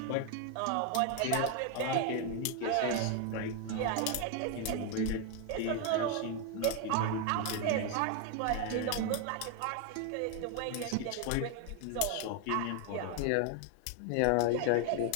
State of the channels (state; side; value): different; both; correlation 0.01